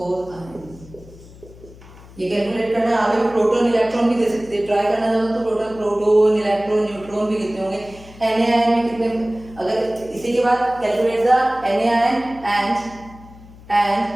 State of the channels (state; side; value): noise; left; hum, 20 dB below the sound